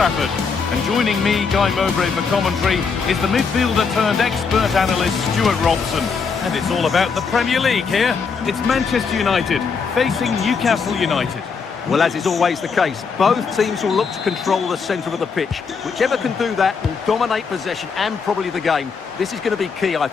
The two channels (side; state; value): right; quieter; 5.5 dB